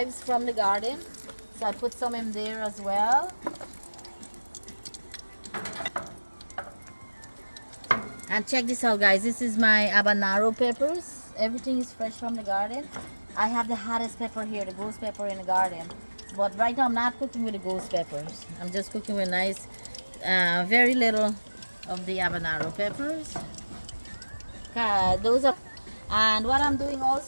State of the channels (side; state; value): both; inverted; correlation -1.00